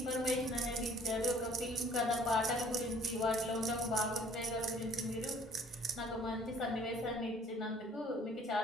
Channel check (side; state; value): both; normal; correlation 0.55